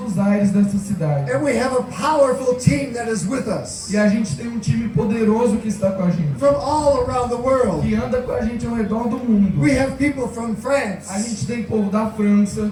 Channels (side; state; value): both; identical; correlation 1.00